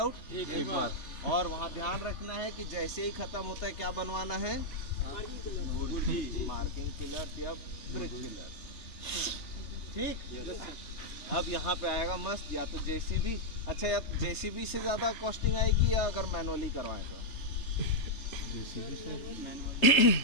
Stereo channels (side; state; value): right; late; 3.3 ms